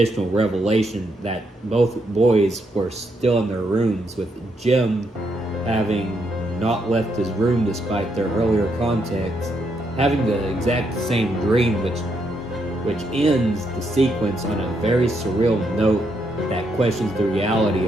revelation that both boys were still in their rooms, with Jim having not left his room despite their earlier contacts, having the exact same dream, which ends the sequence on a very surreal note that questions the reality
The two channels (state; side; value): normal; both; correlation 0.77